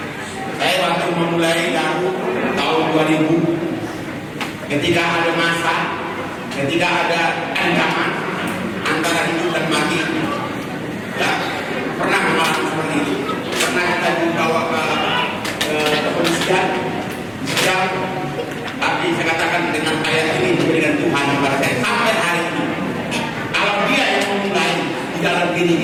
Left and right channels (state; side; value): identical; both; correlation 1.00